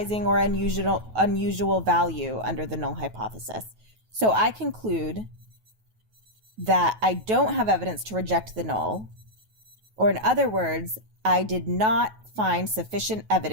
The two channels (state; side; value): late; left; 9.3 ms